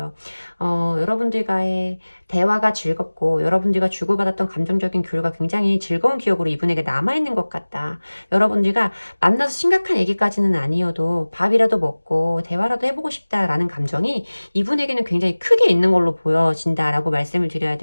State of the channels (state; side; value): inverted; both; correlation -1.00